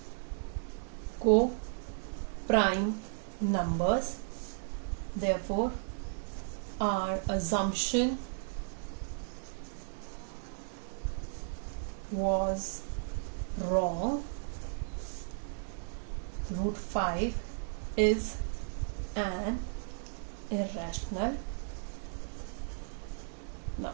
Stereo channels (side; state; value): left; silent; 55 dB below the other